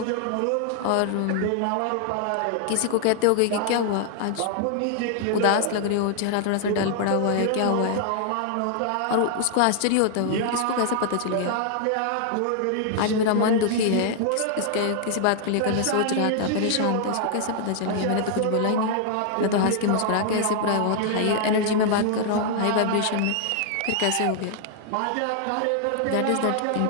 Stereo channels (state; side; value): different; both; correlation -0.01